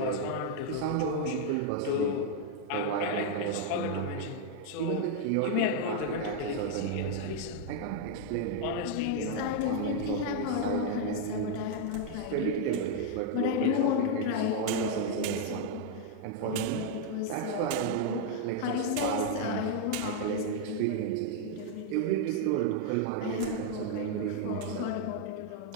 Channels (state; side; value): different; both; correlation 0.00